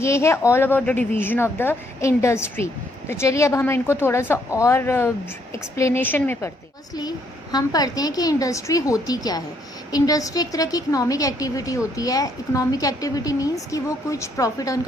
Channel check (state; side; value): normal; both; correlation 0.71